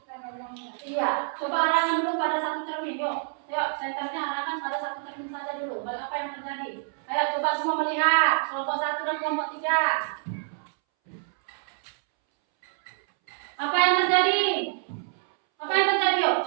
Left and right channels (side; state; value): left; silent; 60 dB below the other